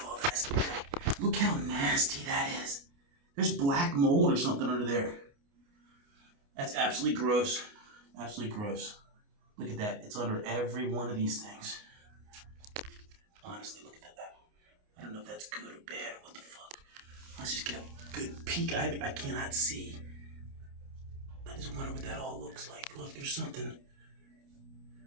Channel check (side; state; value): left; late; 29 ms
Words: all this. Look how nasty that is. There's black mold or something under there. That's absolutely gross. Absolutely gross. Look at that. It's under every one of these things. Honestly, look at that. I don't know if that's good or bad or what the fuck. Let's just get a good peek. I cannot see. I just wonder what that all looks like. Look, there's something